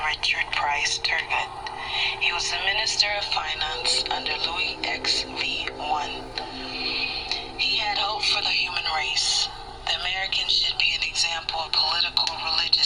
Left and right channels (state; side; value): identical; both; correlation 1.00